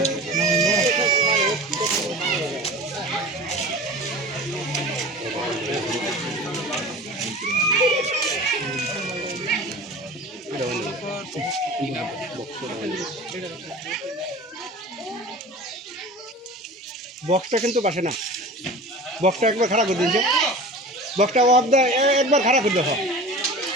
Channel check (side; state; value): both; normal; correlation 0.36